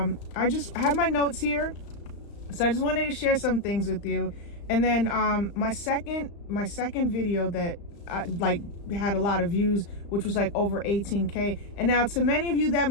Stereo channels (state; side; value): late; right; 35 ms